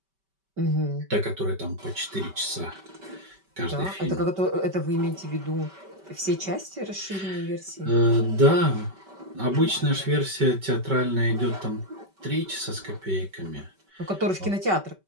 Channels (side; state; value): left; late; 5.2 ms